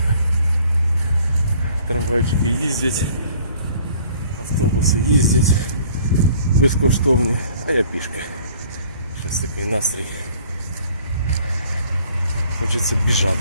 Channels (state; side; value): inverted; both; correlation -0.55